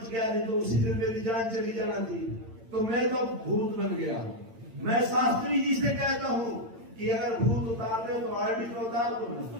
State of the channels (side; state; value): left; late; 8.9 ms